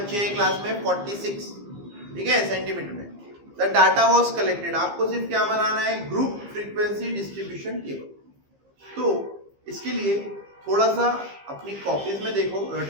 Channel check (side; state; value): left; late; 15 ms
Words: हैं क्लास में, 46, ठीक है, सेंटीमीटर में। The data was collected. आपको सिर्फ क्या बनाना है, ग्रुप फ्रीक्वेंसी डिस्ट्रीब्यूशन टेबल। तो इसके लिए थोड़ा सा अपनी कॉपीज में देखो,